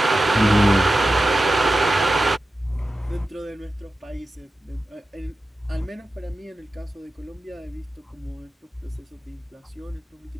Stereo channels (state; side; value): normal; both; correlation 0.93